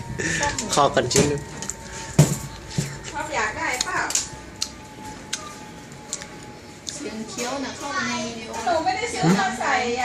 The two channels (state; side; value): identical; both; correlation 1.00